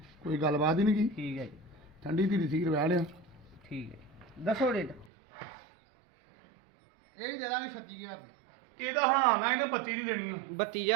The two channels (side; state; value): left; drops out; at 5.1 s